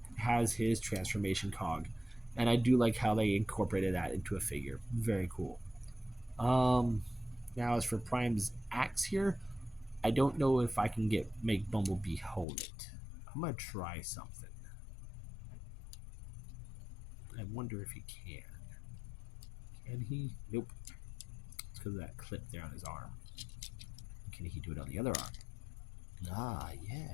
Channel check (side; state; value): right; drops out; at 12.5 s